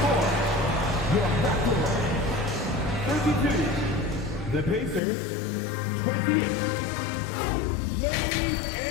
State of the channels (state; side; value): drops out; right; at 5.0 s